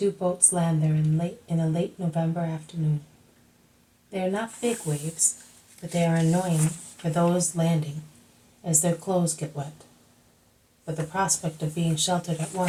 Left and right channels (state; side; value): identical; both; correlation 1.00